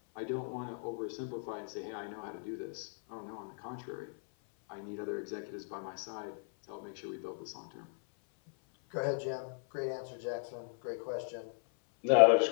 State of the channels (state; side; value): silent; right; 53 dB below the other